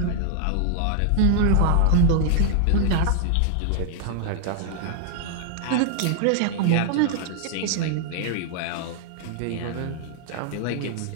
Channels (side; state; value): both; different; correlation -0.01